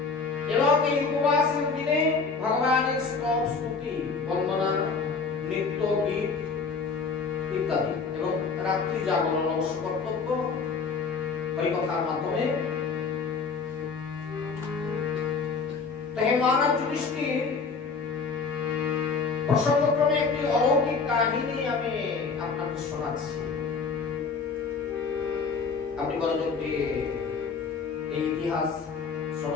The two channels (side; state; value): right; quieter; 4.9 dB